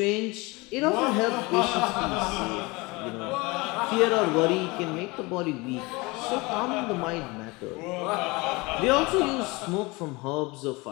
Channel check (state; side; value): quieter; right; 24.5 dB